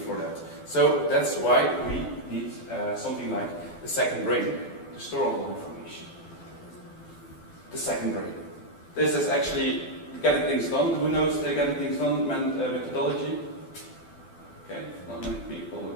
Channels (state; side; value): late; right; 12 ms